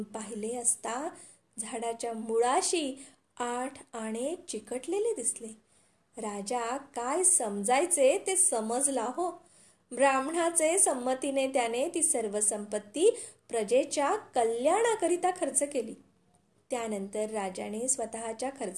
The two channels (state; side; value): identical; both; correlation 1.00